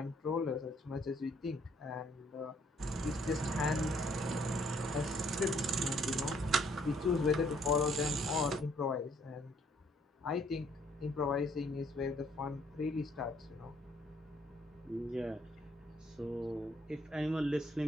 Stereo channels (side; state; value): both; normal; correlation 0.65